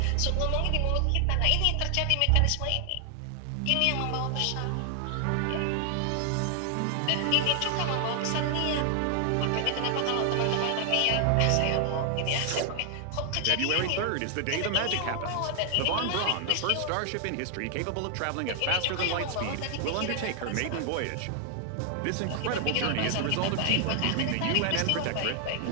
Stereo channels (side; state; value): both; different; correlation 0.00